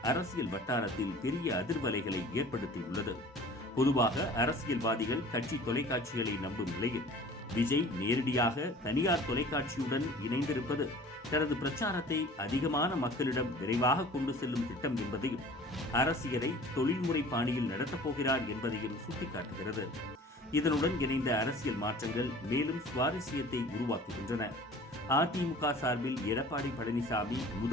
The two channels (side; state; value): both; normal; correlation 0.45